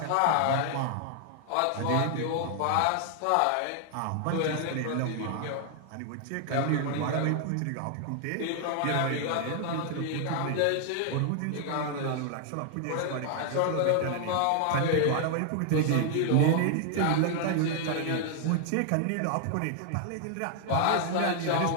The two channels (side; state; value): both; different; correlation 0.00